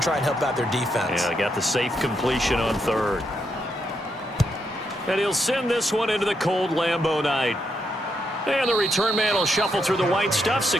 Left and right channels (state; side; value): normal; both; correlation 0.80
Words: and help out their defense. Yeah, they got the safe completion on 3rd. And he'll send this one into the cold Lambeau night. And the return man will shuffle through the white stuff,